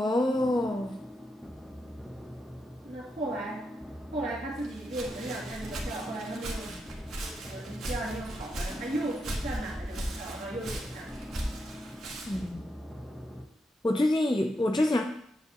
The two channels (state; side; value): normal; both; correlation 0.84